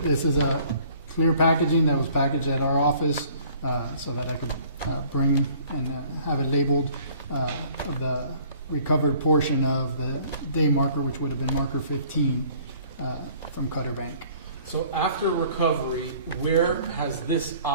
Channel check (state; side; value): inverted; both; correlation -0.55